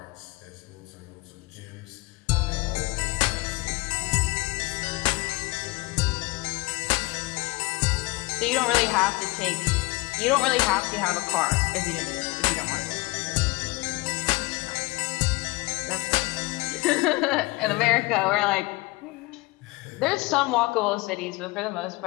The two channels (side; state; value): right; quieter; 23.2 dB